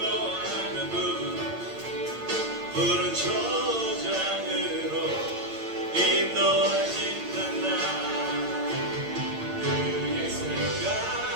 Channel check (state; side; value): late; left; 8.8 ms